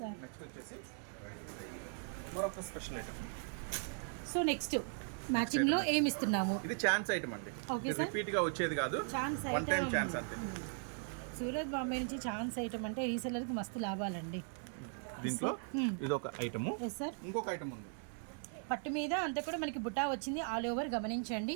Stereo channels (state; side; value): silent; left; 52 dB below the other